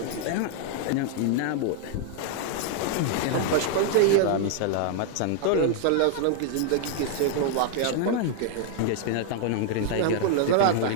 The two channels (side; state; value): both; different; correlation 0.00